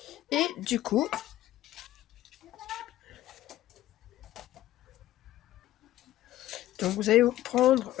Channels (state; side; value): quieter; right; 14.3 dB